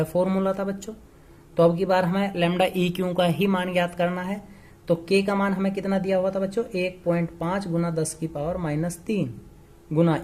फॉर्मूला था बच्चों। तो अब की बार हमें लैम्डा EQ का ही मान ज्ञात करना है। तो k का मान हमें कितना दिया हुआ था बच्चों, 1.5 गुना 10 की पावर -3 गुना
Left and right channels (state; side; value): identical; both; correlation 1.00